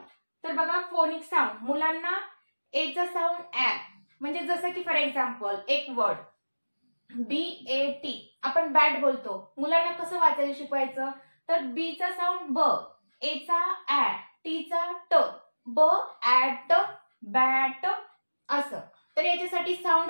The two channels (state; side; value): inverted; both; correlation -1.00